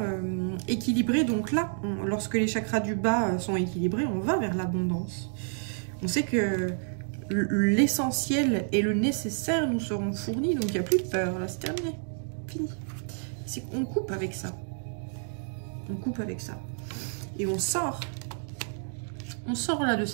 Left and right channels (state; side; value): silent; left; digital silence